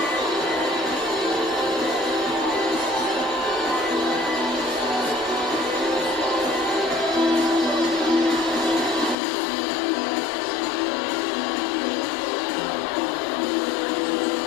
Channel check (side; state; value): right; drops out; at 9.2 s